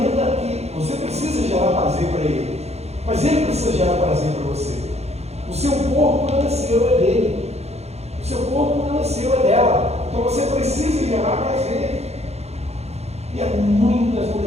que você precisa gerar prazer para ele, mas ele precisa gerar prazer para você. O seu corpo não é seu, é dele. O seu corpo não é seu, é dela. Então você precisa gerar prazer. E há muitas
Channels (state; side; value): late; left; 0.31 ms